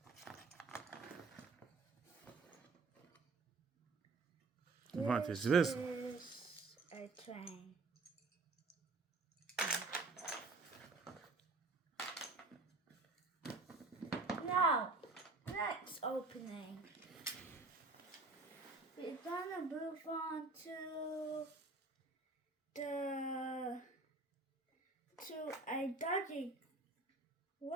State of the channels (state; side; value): quieter; left; 3.6 dB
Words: What is this? This is a train. Now, next opening. We're gonna move on to a doggy.